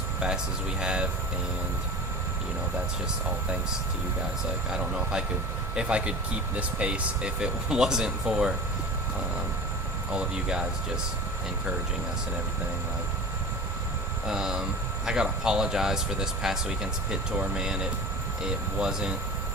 fast as we have, and that's just all thanks to you guys. Like, I don't know if I could keep this pace if it wasn't for all of you guys just encouraging us and everything. Like, I gotta apologize for this past weekend's pit tour, man. It wasn't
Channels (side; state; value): both; normal; correlation 0.34